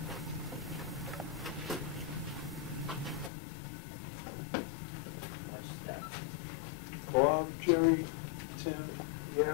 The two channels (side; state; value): right; drops out; at 3.3 s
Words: Bob, Jerry, Tim,